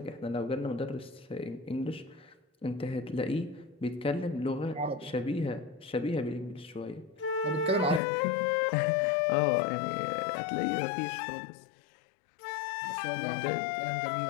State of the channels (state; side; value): drops out; right; at 8.0 s